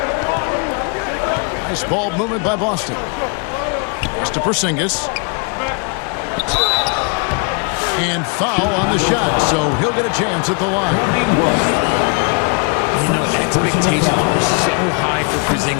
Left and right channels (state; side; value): quieter; right; 36.7 dB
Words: Nice ball movement by Boston. Pass to Porzingis. And foul on the shot, so he'll get a chance at the line. You know, expectations were so high for